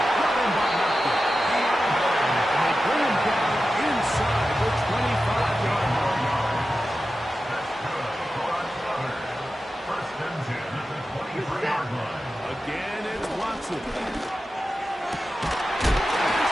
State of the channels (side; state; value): both; normal; correlation 0.93